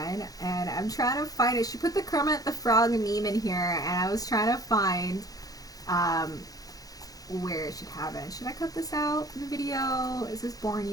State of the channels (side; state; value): right; late; 0.18 ms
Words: And I'm trying to find it. She put the Kermit the Frog meme in here, and I was trying to find where it should have it. Should I cut this out in the video? Is this boring